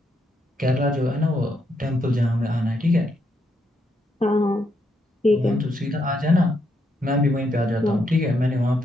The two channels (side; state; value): both; normal; correlation 0.78